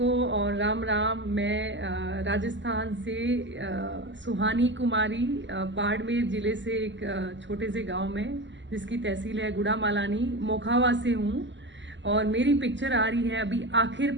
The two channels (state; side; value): late; left; 0.54 ms